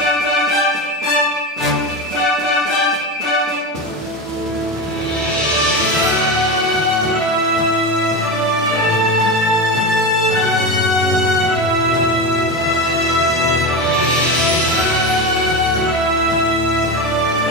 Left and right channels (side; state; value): both; normal; correlation 0.20